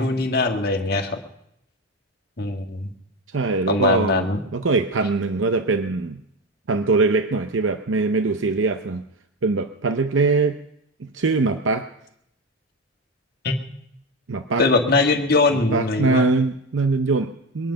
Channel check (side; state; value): both; normal; correlation 0.17